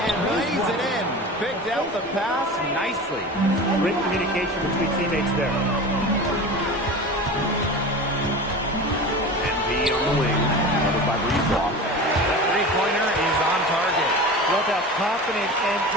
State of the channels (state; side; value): normal; both; correlation 0.32